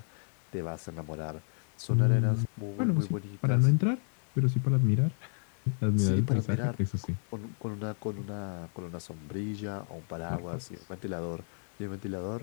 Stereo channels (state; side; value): silent; right; 57 dB below the other